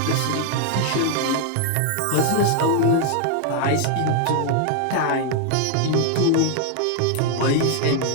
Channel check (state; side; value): different; both; correlation 0.00